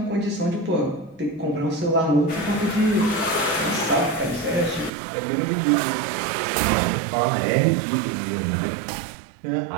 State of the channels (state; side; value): drops out; left; at 4.9 s